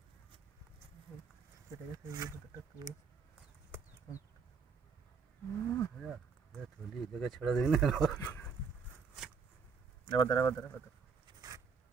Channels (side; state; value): left; quieter; 5.5 dB